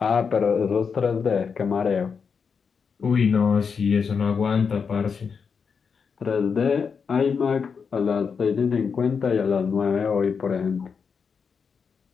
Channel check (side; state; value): right; quieter; 5.9 dB